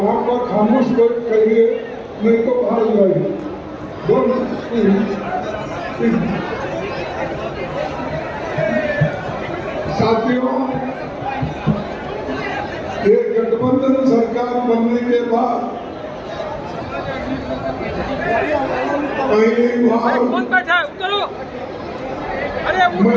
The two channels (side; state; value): both; identical; correlation 1.00